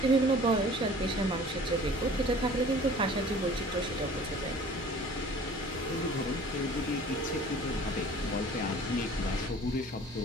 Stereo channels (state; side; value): normal; both; correlation 0.47